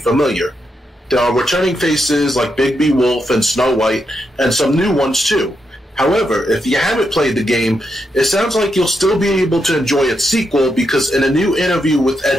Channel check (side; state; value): both; normal; correlation 0.82